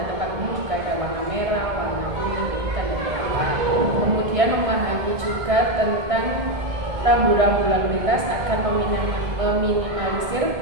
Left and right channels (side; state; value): left; late; 1.6 ms